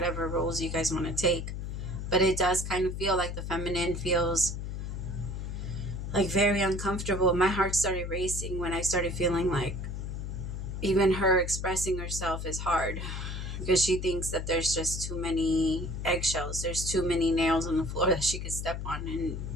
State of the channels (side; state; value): left; noise; hum, 5 dB below the sound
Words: roles you guys want to take. But it does kind of feel like the feminine feels like very uncomfortable. My heart started racing when I started feeling like even her expressing herself is hard, because she thinks that there's just too many eggshells, there's too many nails on the floor that she could step on and